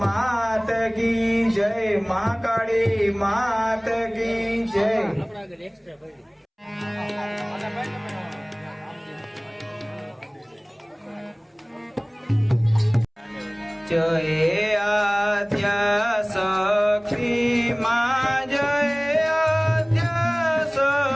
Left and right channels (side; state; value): both; identical; correlation 1.00